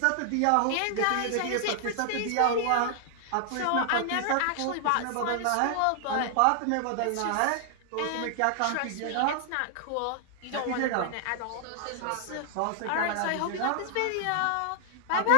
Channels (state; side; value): different; both; correlation 0.00